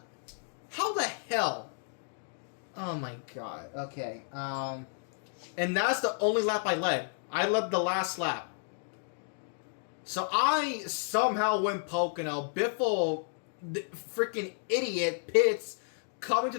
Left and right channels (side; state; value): right; silent; digital silence